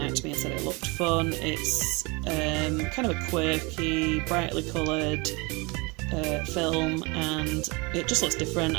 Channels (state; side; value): quieter; left; 27.0 dB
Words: to me and said it looked fun. It's kind of a quirky, brightly coloured film, and it just looks different.